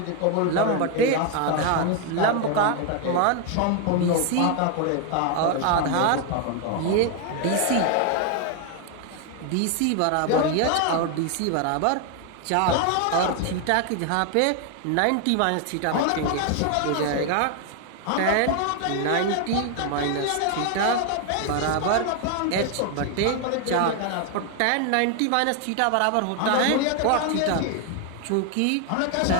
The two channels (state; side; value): different; both; correlation 0.01